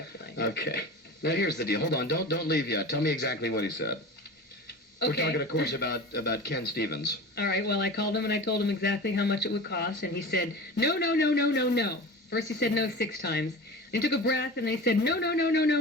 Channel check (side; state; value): both; normal; correlation 0.33